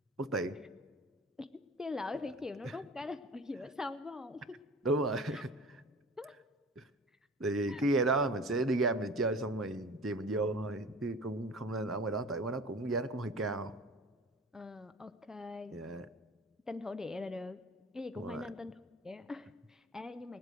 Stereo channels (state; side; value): normal; both; correlation 0.41